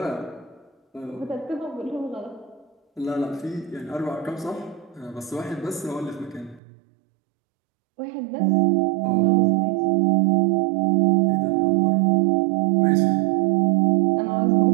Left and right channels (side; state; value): left; drops out; at 6.6 s